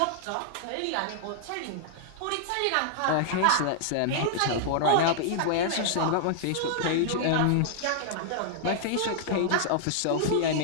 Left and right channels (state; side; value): different; both; correlation -0.01